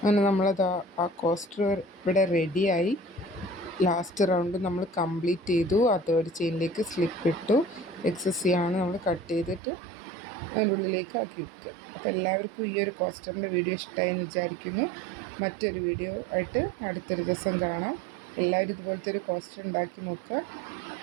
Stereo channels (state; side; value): drops out; left; at 9.6 s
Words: അങ്ങനെ നമ്മളത് ആ കോസ്റ്റർ ഇവിടെ റെഡിയായി. ലാസ്റ്റ് റൗണ്ട് നമ്മൾ കംപ്ലീറ്റ് ചെയ്തു. ആ തേർഡ് ചെയിനിലേക്ക് സ്ലിപ്പ് ഇട്ടു. എക്സസ് നമ്മൾ കട്ട് ചെയ്തിട്ട് അതിൻ്റെ ഉള്ളിലേക്ക് ആക്കി വെക്കുക. അപ്പോൾ എല്ലാവർക്കും ഈ ഒരു കോസ്റ്ററിൻ്റെ വീഡിയോ ഇഷ്ടമായെന്ന് വിചാരിക്കുന്നു. മറ്റൊരു വീഡിയോ ആയിട്ട് അടുത്തൊരു ദിവസം കാണാം. എല്ലാവരും ഇതുപോലത്തെ ഒരു കോസ്റ്റർ ഉണ്ടാക്കി നോക്കുക.